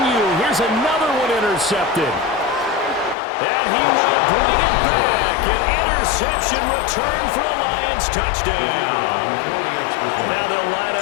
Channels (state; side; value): drops out; right; at 3.2 s